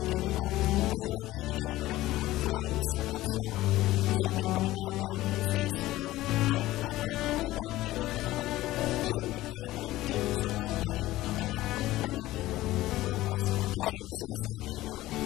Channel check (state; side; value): quieter; right; 16.6 dB